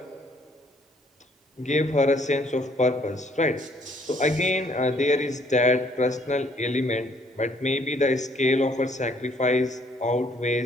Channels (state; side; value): normal; both; correlation 0.64